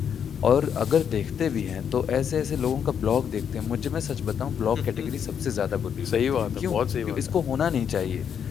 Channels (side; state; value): right; quieter; 8.0 dB